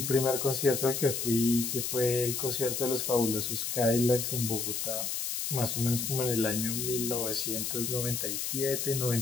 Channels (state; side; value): noise; left; hiss, 2 dB below the sound